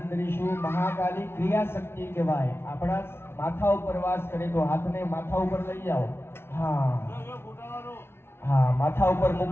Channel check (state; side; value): late; right; 0.12 ms